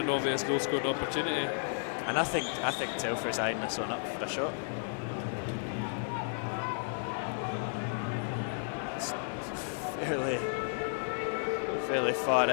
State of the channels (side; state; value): right; silent; 56 dB below the other